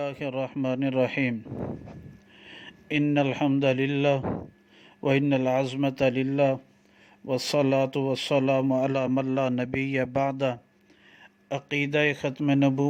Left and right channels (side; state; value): both; identical; correlation 1.00